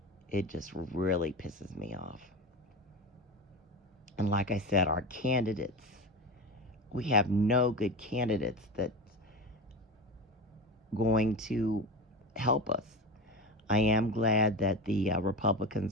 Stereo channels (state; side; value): normal; both; correlation 0.25